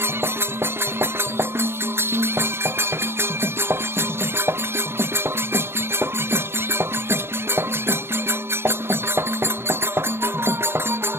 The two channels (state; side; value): late; left; 0.12 ms